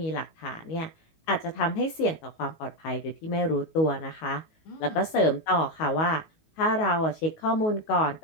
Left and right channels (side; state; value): right; late; 19 ms